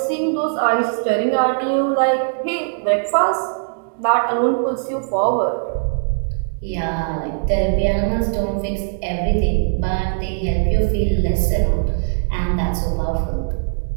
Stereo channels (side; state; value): left; silent; 66 dB below the other